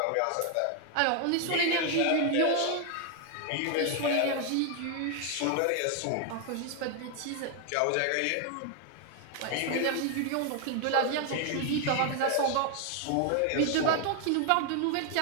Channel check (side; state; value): both; different; correlation 0.00